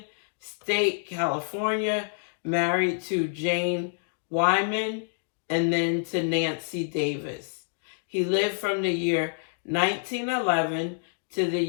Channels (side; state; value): right; silent; digital silence